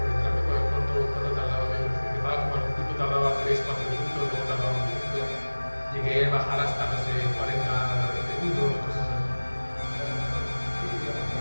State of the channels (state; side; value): inverted; both; correlation -1.00